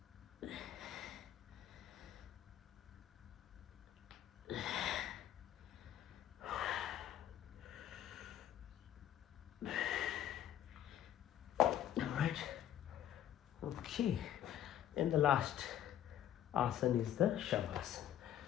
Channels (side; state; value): right; quieter; 11.2 dB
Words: Okay, and the last asana is the